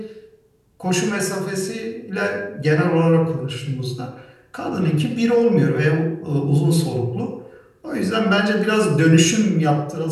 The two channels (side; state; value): both; identical; correlation 1.00